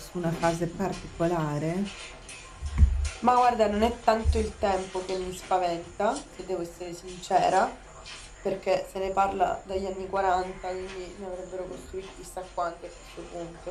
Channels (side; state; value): both; identical; correlation 1.00